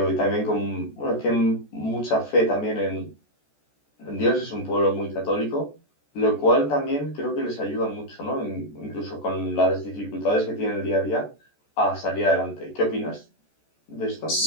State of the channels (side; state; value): right; late; 14 ms